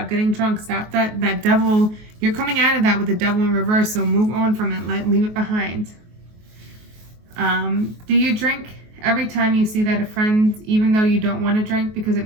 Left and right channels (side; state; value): left; late; 23 ms